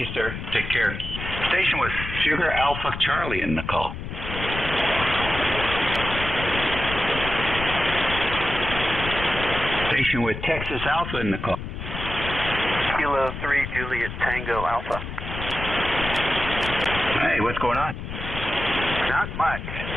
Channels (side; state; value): left; noise; rumble, 7 dB below the sound